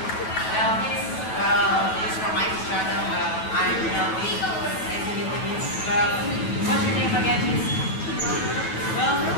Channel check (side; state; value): right; late; 9.3 ms